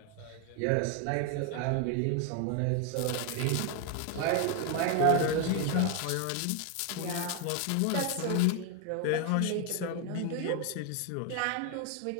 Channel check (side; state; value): both; different; correlation 0.01